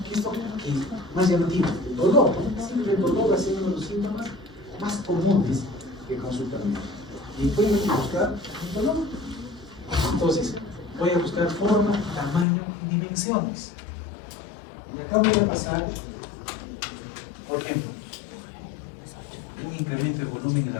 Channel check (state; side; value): drops out; right; at 12.5 s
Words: ¿Qué es lo que más llamativo? El dolor, ¿no? Siempre el dolor va a ser uno de los síntomas más comunes que consultan. Y voy a buscar el dolor. Entonces, voy a buscar forma, tamaño y dimensiones. Y acá voy a pasar, por ejemplo, un incremento de volumen en